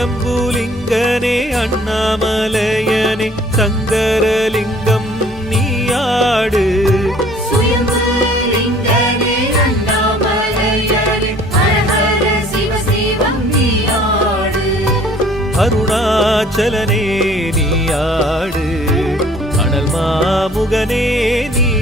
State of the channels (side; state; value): both; normal; correlation 0.54